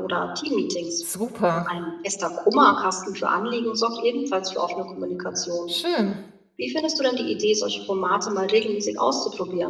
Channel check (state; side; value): identical; both; correlation 1.00